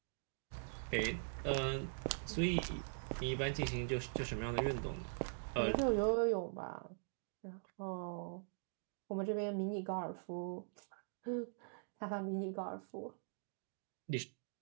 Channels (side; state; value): left; silent; digital silence